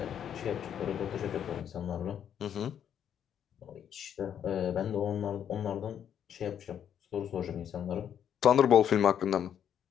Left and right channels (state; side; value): quieter; right; 9.1 dB